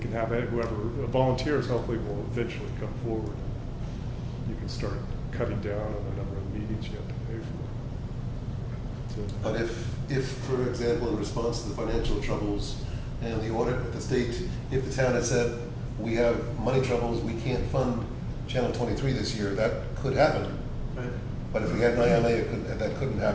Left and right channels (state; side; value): identical; both; correlation 1.00